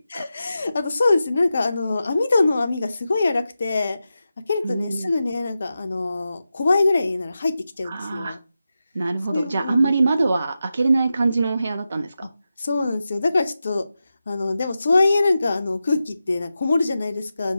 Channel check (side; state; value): both; inverted; correlation -0.91